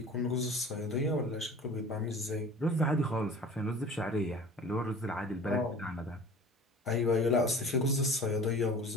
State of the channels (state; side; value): normal; both; correlation 0.42